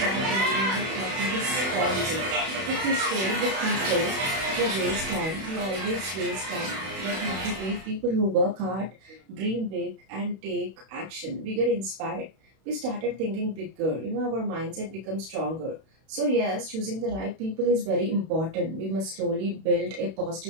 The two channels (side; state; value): left; late; 31 ms